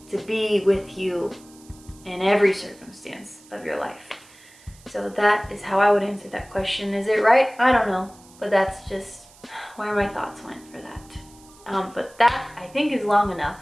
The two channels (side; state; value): right; noise; hiss, 25 dB below the sound